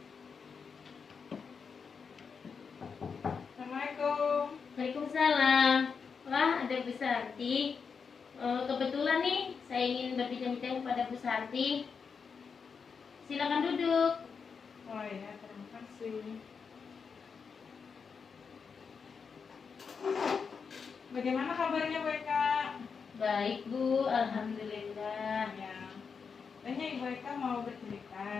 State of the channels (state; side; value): quieter; right; 5.8 dB